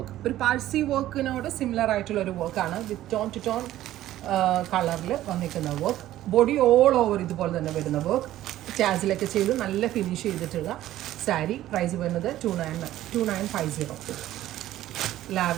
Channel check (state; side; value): quieter; left; 13.9 dB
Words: ഒരു Parsi വർക്കിനോട് similar ആയിട്ടുള്ള ഒരു വർക്കാണ് വിത്ത് tone to tone കളറിൽ വന്നിരിക്കുന്ന വർക്ക്. ബോഡി ഓൾ ഓവർ ഇതുപോലെ തന്നെ വരുന്ന വർക്ക്. ടാസിലൊക്കെ ചെയ്ത് നല്ല ഫിനിഷ് ചെയ്തിട്ടുള്ള സാരി. പ്രൈസ് വരുന്നത് 2950.